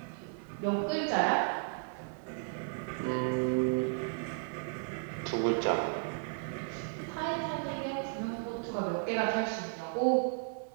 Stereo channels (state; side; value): silent; left; 55 dB below the other